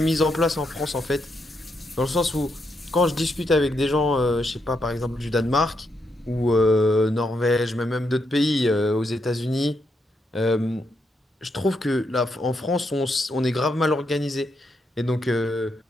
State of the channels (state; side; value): normal; both; correlation 0.80